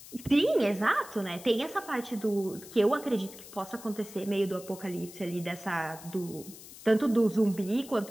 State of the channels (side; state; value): left; noise; hiss, 17 dB below the sound